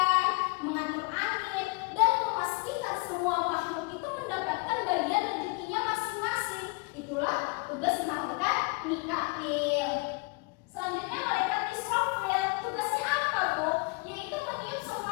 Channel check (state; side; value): quieter; right; 28.9 dB